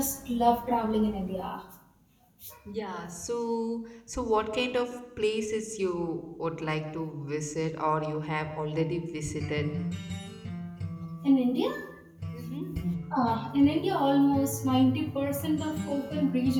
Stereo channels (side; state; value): both; identical; correlation 1.00